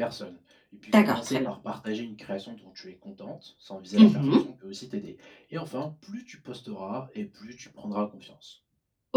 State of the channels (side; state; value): both; identical; correlation 1.00